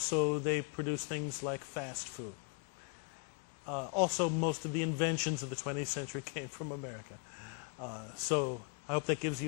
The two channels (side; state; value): right; quieter; 36.0 dB